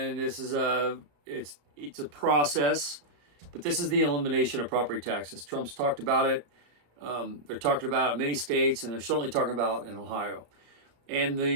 this is it's a process. But this is the elimination of property taxes. Trump's talked about it. They're talking about it in many states, and they're certainly talking about it in Ohio. And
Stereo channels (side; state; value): left; late; 34 ms